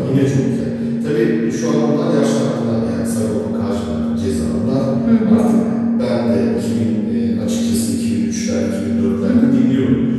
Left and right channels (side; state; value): both; identical; correlation 1.00